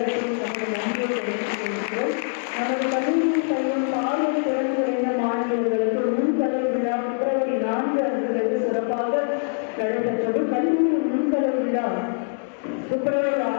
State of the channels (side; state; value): right; silent; 63 dB below the other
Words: நமது நன்றியை தெரிவித்துக் கொள்கிறோம். நமது கல்லூரியில் பயிலும் பார்வை திறன்குறைந்த மாணவர்களுக்கு முன்கலை விழா பிப்ரவரி 4 அன்று வெகு சிறப்பாக நடைபெற்றது. கல்லூரியின் முன்கலை விழா பிப்ரவரி